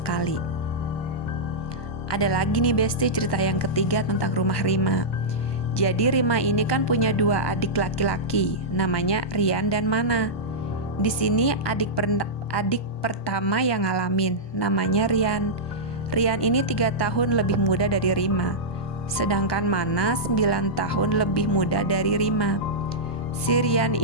Ada lagi nih Besti cerita yang ketiga tentang rumah Rima. Jadi Rima ini kan punya 2 adik laki-laki, namanya Rian dan Mana. Di sini adik pertama yang ngalamin, namanya Rian. Rian ini 3 tahun lebih muda dari Rima, sedangkan Mana 9 tahun lebih muda dari Rima. Si Rian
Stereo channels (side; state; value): right; late; 1.2 ms